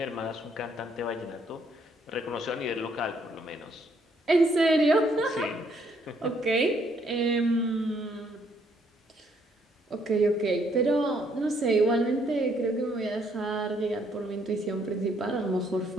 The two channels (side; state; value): both; normal; correlation 0.69